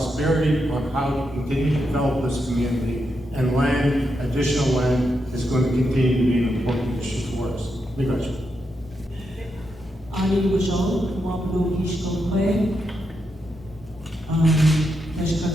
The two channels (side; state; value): both; normal; correlation 0.84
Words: on how to continue to develop this community. And land, additional land, is going to continue to be an important issue for us. Because Ani Wajol, Wapno Hishkokwe,